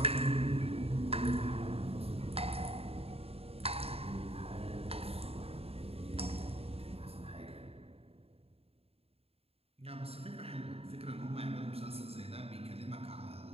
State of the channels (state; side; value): late; left; 0.29 ms